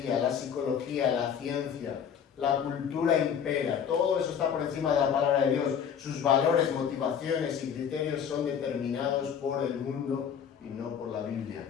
la psicología, la ciencia, la cultura impera. Todo eso está por encima de la palabra de Dios. Sus valores, motivaciones y criterios son determinados por el mundo y no por la Biblia.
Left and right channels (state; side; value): quieter; right; 7.9 dB